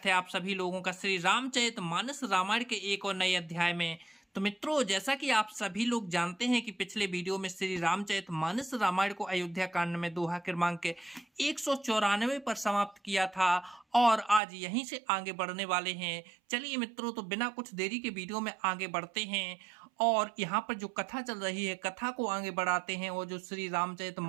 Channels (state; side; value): drops out; left; at 14.4 s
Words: है आप सभी लोगों का श्री रामचरितमानस रामायण के एक और नए अध्याय में। तो मित्रों, जैसा कि आप सभी लोग जानते हैं कि पिछले वीडियो में श्री रामचरितमानस रामायण को अयोध्या कांड में दोहा क्रमांक के 194 पर समाप्त किया था और आज यहीं से आगे बढ़ने वाले हैं। चलिए मित्रों, तो बिना कुछ देरी के वीडियो में आगे बढ़ते हैं और यहाँ पर जो कथा चल रही है कथा को आगे बढ़ाते हैं और जो श्री